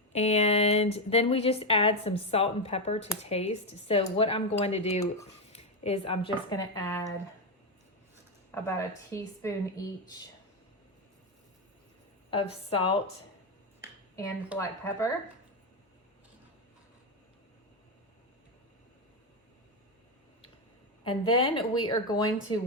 And then we just add some salt and pepper to taste. So what I'm going to do is I'm just going to add about 1 teaspoon each of salt and black pepper. And then we are going to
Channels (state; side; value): normal; both; correlation 0.07